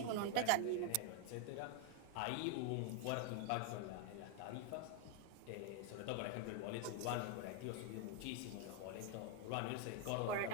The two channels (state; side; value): different; both; correlation 0.00